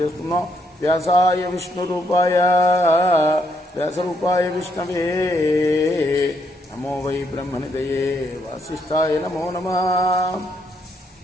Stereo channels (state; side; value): normal; both; correlation 0.74